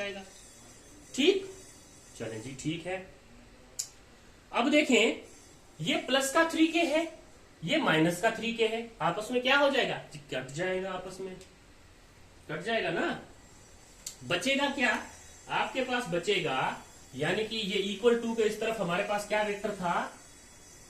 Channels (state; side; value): identical; both; correlation 1.00